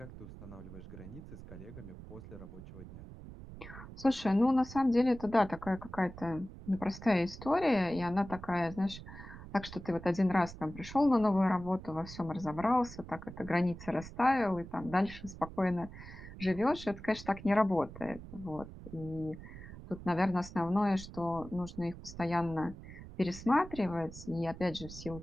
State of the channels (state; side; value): noise; right; rumble, 14 dB below the sound